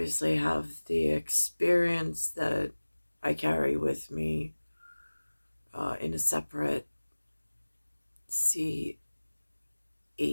have the experience that I carry with me in a separate CHSSFH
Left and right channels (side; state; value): both; inverted; correlation -1.00